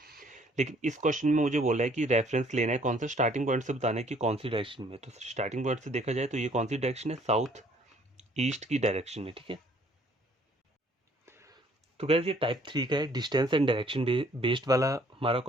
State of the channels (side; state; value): both; normal; correlation 0.61